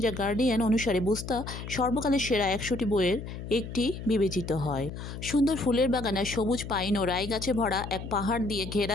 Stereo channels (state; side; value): noise; left; hum, 9 dB below the sound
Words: দ্য গার্ডিয়ান অনুসারে, বুস্তা সর্বকালের সেরা 100টি বইয়ের একটি বিবেচিত হয়। সুন্দর ফুলের বাগান আর সবুজ পাইন ও রাই গাছে ভরা এক পাহাড় দিয়ে